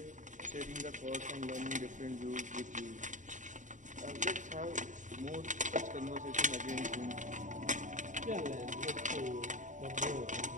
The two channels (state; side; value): late; left; 0.36 ms